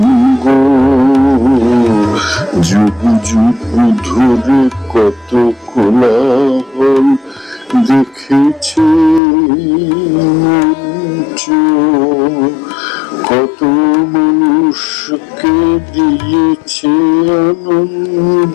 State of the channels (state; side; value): drops out; right; at 9.2 s